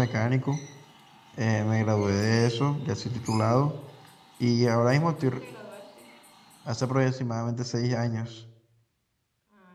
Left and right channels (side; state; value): both; identical; correlation 1.00